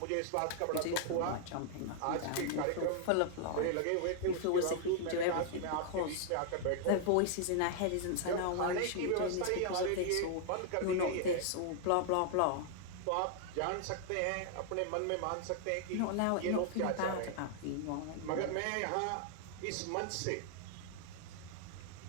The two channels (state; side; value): different; both; correlation 0.00